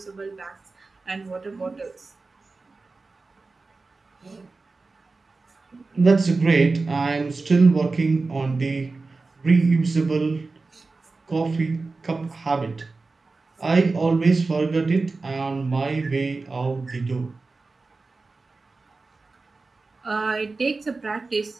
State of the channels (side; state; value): left; quieter; 3.8 dB